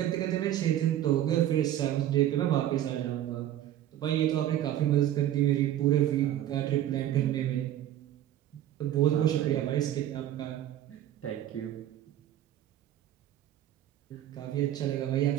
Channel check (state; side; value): quieter; left; 12.0 dB